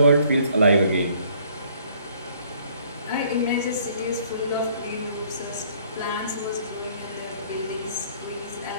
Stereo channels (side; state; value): both; inverted; correlation -0.61